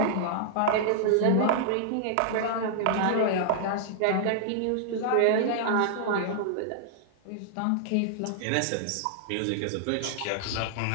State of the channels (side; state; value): both; different; correlation -0.01